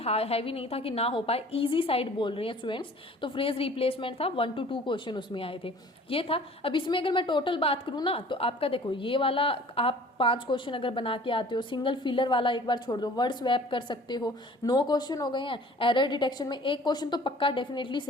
नहीं था कि ना हो पाए, इजी साइड बोल रहे हैं स्टूडेंट्स, तो फ्रेज रिप्लेसमेंट था, 1 to 2 क्वेश्चन उसमें आए थे, ये था। अब इसमें अगर मैं टोटल बात करूँ ना, तो आपका देखो ये वाला आप 5 क्वेश्चन अगर बना के आते हो, सिंगल फिलर वाला एक बार छोड़ दो, वर्ड स्वैप कर सकते हो, 9 क्वेश्चन हो गए हैं। एरर डिटेक्शन में एक क्वेश्चन तो पक्का डेफिनेटली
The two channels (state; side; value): normal; both; correlation 0.49